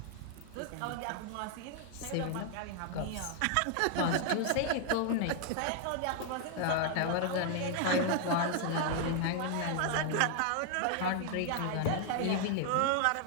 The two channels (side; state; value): both; different; correlation 0.00